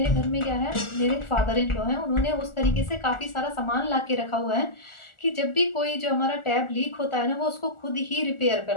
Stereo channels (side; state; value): right; late; 1.4 ms